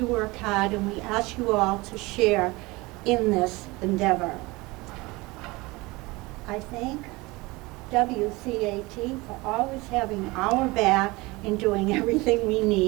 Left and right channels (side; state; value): left; quieter; 22.8 dB